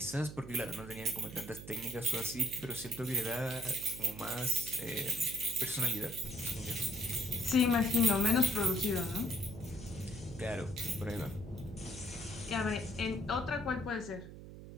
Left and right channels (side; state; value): right; noise; hum, 13 dB below the sound